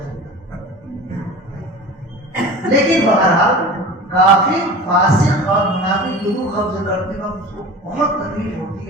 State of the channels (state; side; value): normal; both; correlation 0.36